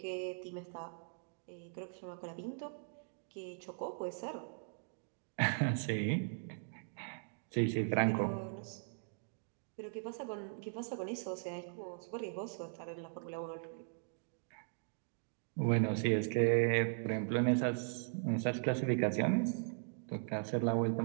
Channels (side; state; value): left; silent; digital silence